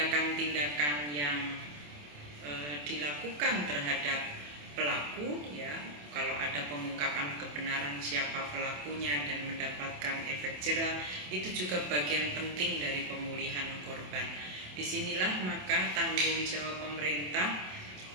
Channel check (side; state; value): left; late; 27 ms